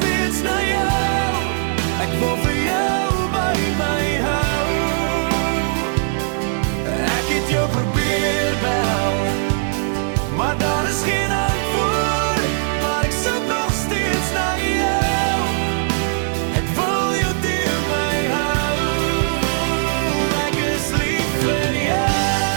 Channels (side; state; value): left; silent; 66 dB below the other